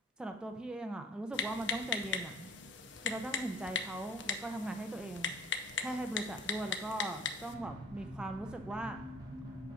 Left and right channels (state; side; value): normal; both; correlation 0.52